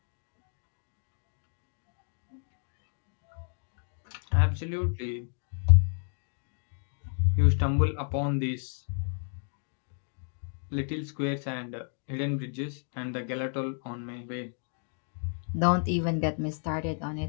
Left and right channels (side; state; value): right; silent; 57 dB below the other